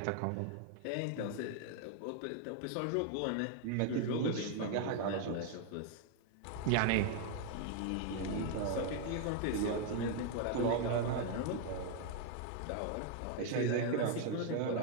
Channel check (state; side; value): different; both; correlation 0.00